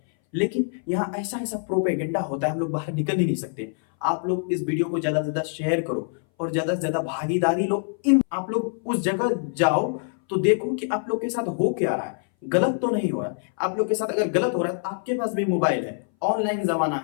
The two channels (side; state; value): right; silent; 60 dB below the other